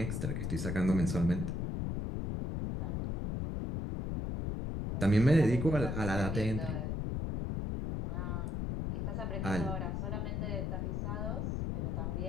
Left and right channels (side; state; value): left; noise; rumble, 2 dB below the sound